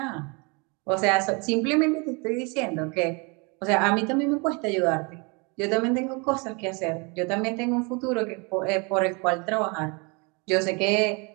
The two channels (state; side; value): quieter; left; 30.6 dB